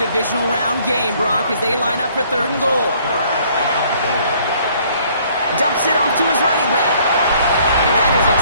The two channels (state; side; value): inverted; both; correlation -0.61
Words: round game, Brock, as they line up for 3rd and goal. Dumps it off to his running back. And that is a